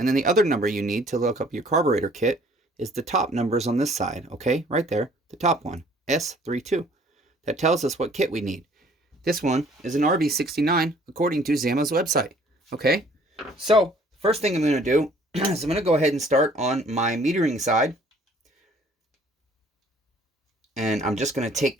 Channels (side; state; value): both; normal; correlation 0.57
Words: then the other number you need to look up your carburetor kit is the top numbers on this side, okay? Right there, the top one, S32. That tells us what kit we need. This one is an RB69 according to Zama's website, okay? So, first thing I'm going to do is I'm going to go ahead and start on my metering side. And I'm just going to